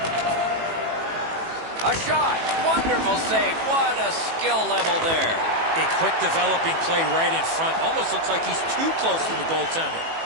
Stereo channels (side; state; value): left; late; 18 ms